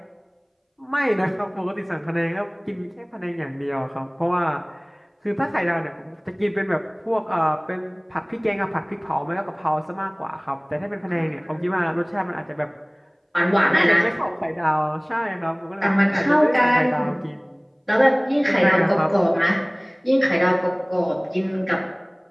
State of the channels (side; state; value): both; identical; correlation 1.00